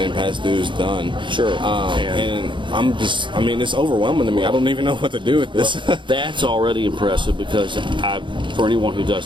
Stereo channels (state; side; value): late; left; 0.23 ms